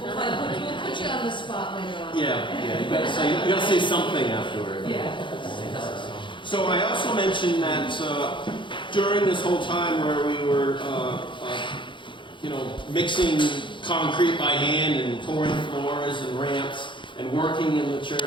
we'll put you on the spot later on. Yeah, you gotta say something afterward. Yeah. So I also mentioned that during this whole time where we were, mixing concrete by hand and pouring floors and ramps and working in the church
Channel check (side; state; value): right; late; 0.23 ms